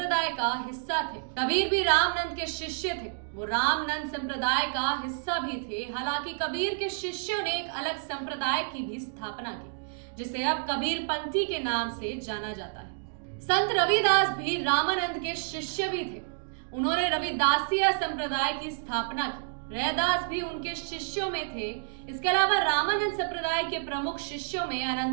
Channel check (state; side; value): silent; left; digital silence